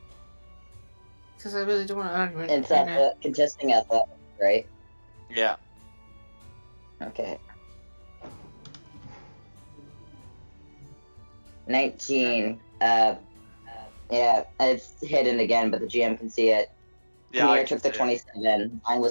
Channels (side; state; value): both; inverted; correlation -1.00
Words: Because I really don't want to argue It's right now. contesting athletics, right? Yeah. Okay. 19. Yeah, it's hidden again, but the GM can see it. Yeah, I Kamir can took the see it. 27. Mine